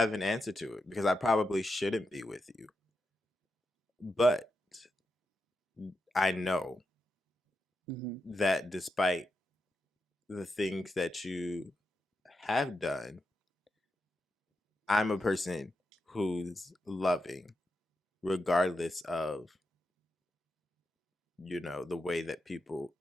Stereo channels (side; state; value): both; normal; correlation 0.87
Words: an answer to it because I probably shouldn't be with you. But I know Hmm. that despite the things that you have done, I'm a person who's loving, regardless of, the way that people